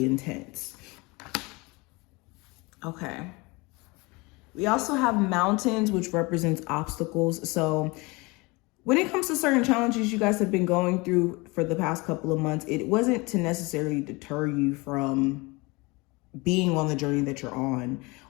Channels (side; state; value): right; quieter; 25.3 dB